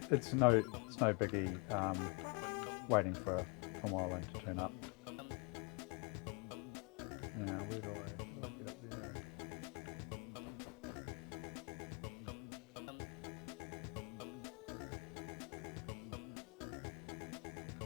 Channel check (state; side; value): quieter; right; 32.8 dB